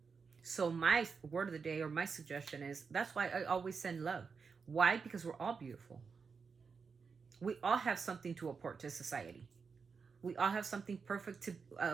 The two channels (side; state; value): left; quieter; 5.4 dB